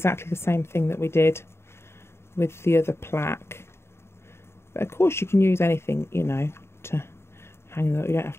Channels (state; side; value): late; right; 0.12 ms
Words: the same thing that we did with the other plaque. But of course you can use anything, you know, to hang that. You don't have